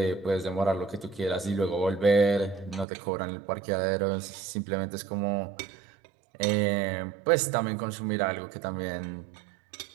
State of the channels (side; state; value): left; drops out; at 2.9 s